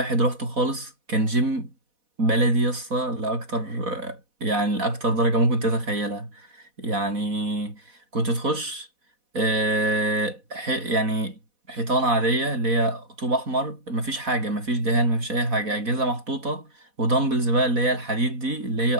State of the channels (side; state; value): left; late; 4.1 ms